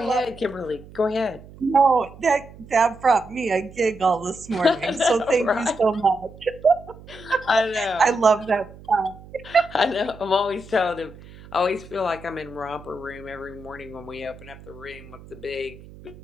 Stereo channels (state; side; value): noise; right; hum, 19 dB below the sound